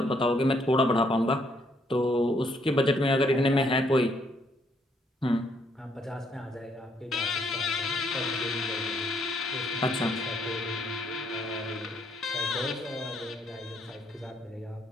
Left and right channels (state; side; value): normal; both; correlation 0.71